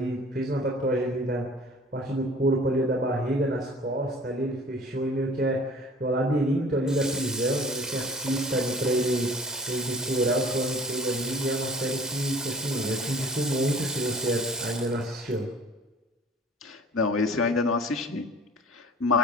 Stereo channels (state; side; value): normal; both; correlation 0.47